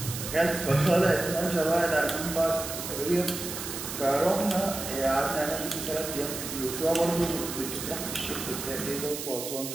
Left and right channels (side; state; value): right; noise; hiss, 7 dB below the sound